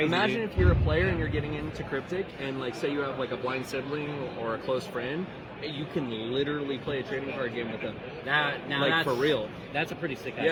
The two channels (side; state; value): both; identical; correlation 1.00